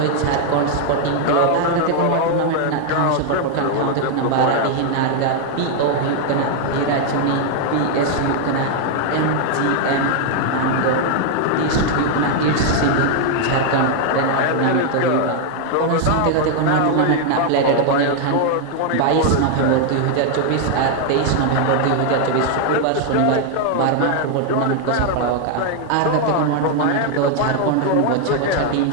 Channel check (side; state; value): both; different; correlation 0.00